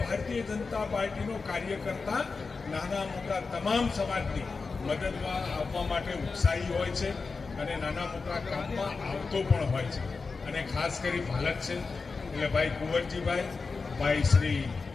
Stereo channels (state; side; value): quieter; right; 4.5 dB